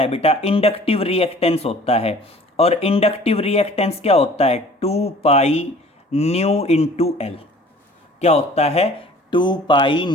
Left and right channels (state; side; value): normal; both; correlation 0.49